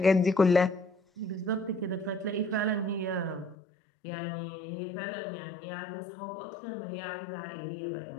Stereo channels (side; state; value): right; drops out; at 3.6 s